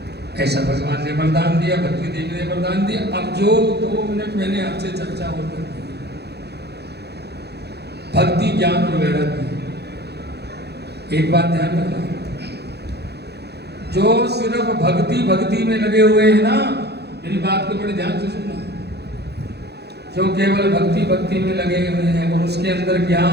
ऐसा भगवान ने वरदान दिया, भक्ति देवी ने वरदान दिया। अब जो 2 मिनट मैंने आपसे चर्चा और कर दी, भक्ति, ज्ञान और वैराग्य। एक बात ध्यान रखना, जो सिर्फ भक्ति में लगे हुए हैं ना, मेरी बात को बड़े ध्यान से सुनना, जो केवल भक्ति में लगे हुए हैं और उसके अंदर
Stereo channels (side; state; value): left; late; 0.48 ms